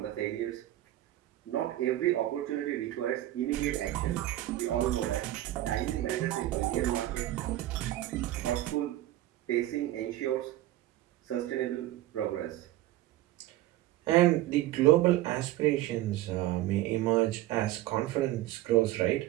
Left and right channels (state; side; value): quieter; left; 15.1 dB